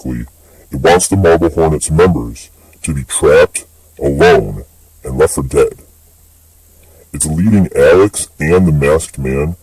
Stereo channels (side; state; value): both; identical; correlation 1.00